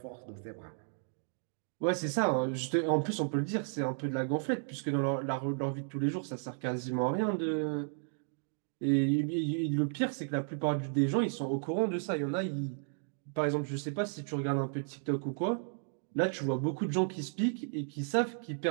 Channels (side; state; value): left; silent; 55 dB below the other